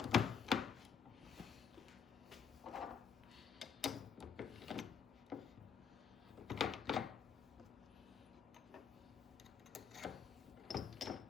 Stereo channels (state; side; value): quieter; right; 6.8 dB